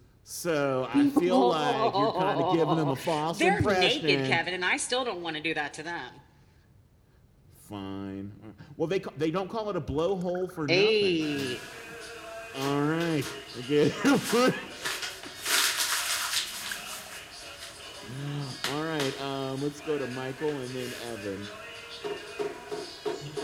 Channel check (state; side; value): identical; both; correlation 1.00